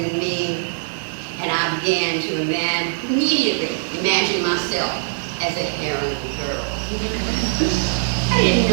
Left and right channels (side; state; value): left; silent; digital silence